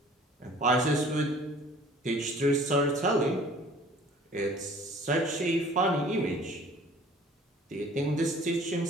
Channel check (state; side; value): normal; both; correlation 0.51